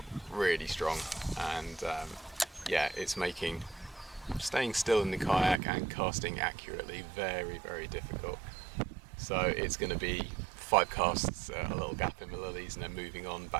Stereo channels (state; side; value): drops out; left; at 5.6 s